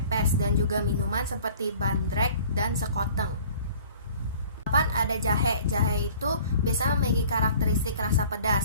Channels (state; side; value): inverted; both; correlation -0.49